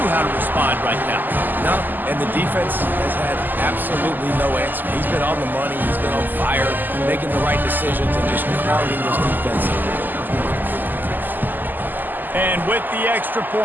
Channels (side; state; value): left; late; 0.088 ms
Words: how to respond right now. No, and the defense has had absolutely no answer. He's been on the money. He's been on fire, making the right decisions, and just crowding this defense. And with the extra